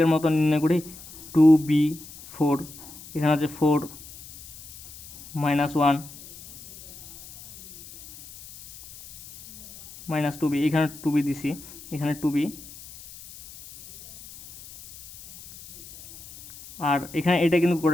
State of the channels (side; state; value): left; noise; hiss, 18 dB below the sound